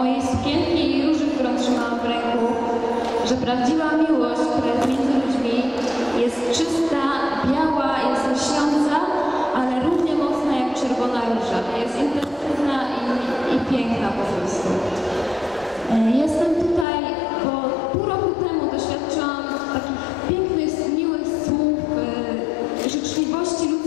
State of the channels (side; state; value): right; drops out; at 16.9 s